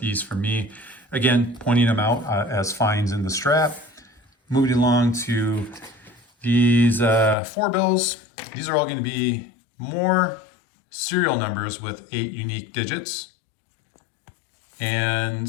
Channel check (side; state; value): right; drops out; at 7.4 s